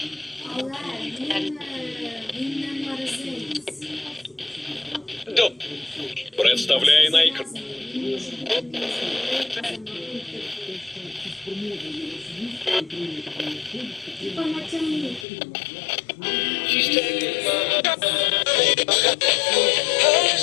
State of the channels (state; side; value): drops out; right; at 15.2 s